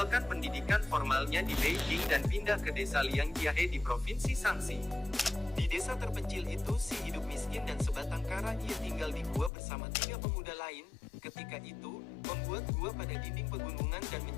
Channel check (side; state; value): right; drops out; at 9.5 s